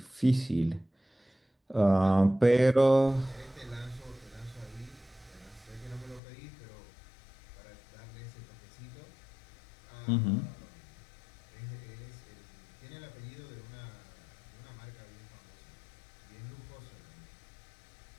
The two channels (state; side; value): drops out; right; at 6.2 s